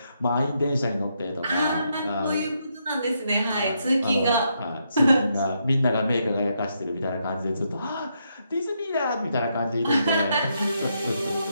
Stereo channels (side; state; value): both; inverted; correlation -0.79